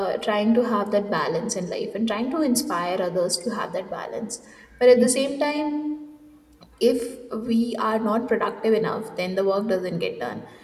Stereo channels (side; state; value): both; identical; correlation 1.00